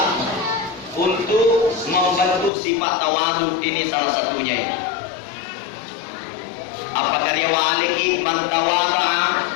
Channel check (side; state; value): right; drops out; at 2.5 s